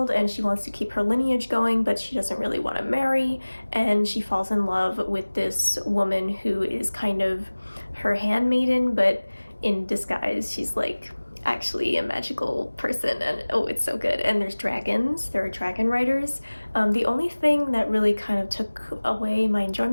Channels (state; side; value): inverted; both; correlation -1.00